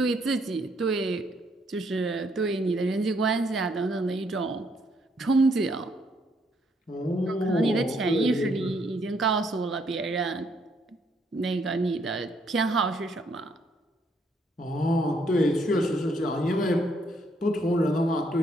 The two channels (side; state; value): both; normal; correlation 0.71